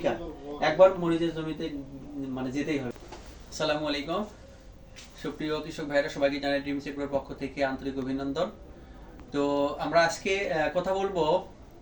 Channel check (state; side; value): identical; both; correlation 1.00